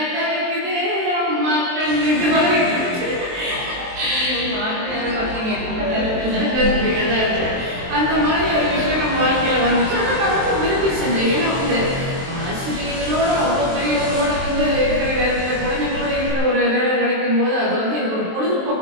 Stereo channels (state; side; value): late; left; 23 ms